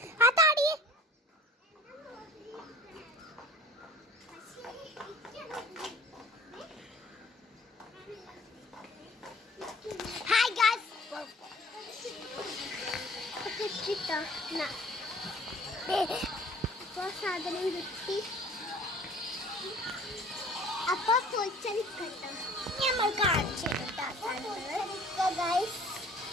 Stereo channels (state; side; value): normal; both; correlation 0.50